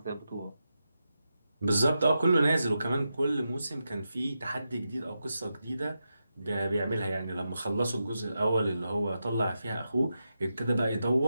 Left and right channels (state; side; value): inverted; both; correlation -0.88